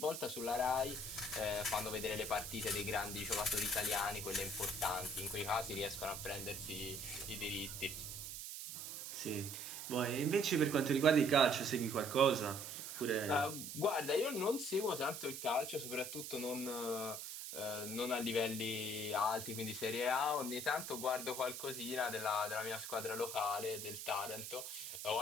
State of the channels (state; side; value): noise; right; hiss, 7 dB below the sound